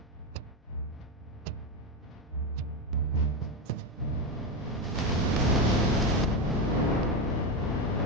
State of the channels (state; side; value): normal; both; correlation 0.13